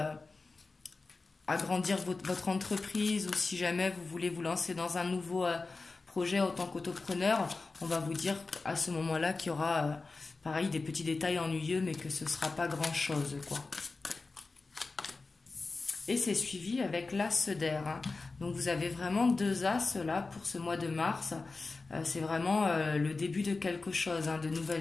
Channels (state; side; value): quieter; right; 3.8 dB